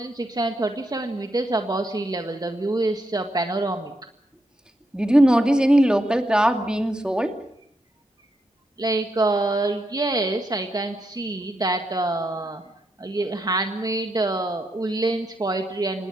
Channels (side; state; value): both; normal; correlation 0.81